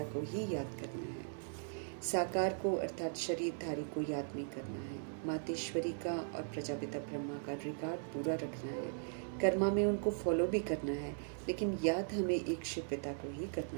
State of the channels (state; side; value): silent; left; 52 dB below the other